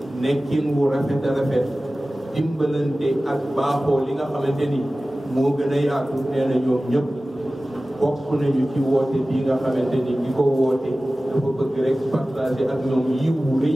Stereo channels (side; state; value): both; normal; correlation 0.96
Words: nekkin wu rafet a rafet dimbalante ak baaxoo li nga xamante ni moo gën a yaatu nee na ñoom ñëpp bokk nañu ci woote bii nga xamante ni ki ko woote dafa bëgg rek partager ak ñoom yiw wu